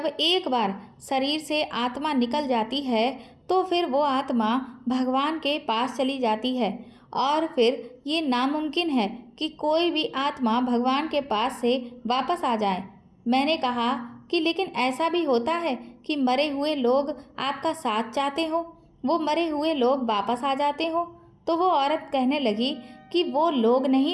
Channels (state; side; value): identical; both; correlation 1.00